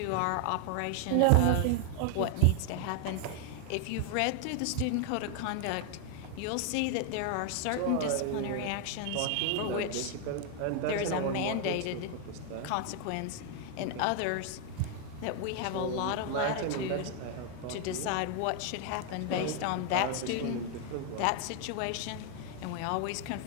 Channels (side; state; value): both; different; correlation 0.01